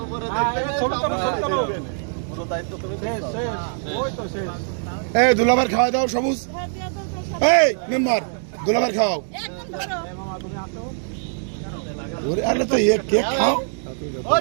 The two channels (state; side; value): silent; left; digital silence